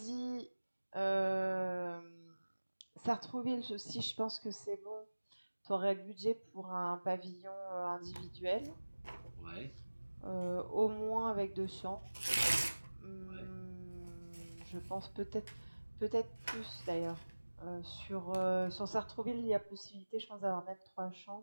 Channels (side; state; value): both; inverted; correlation -1.00